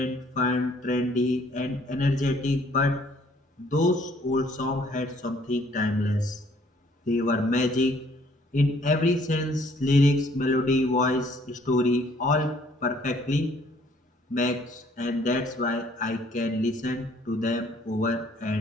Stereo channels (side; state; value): both; normal; correlation 0.61